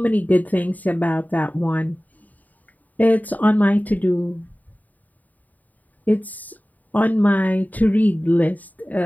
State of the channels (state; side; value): late; right; 0.079 ms